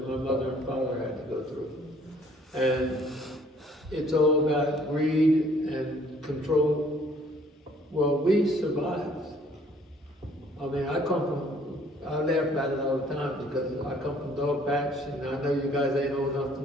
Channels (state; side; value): normal; both; correlation 0.60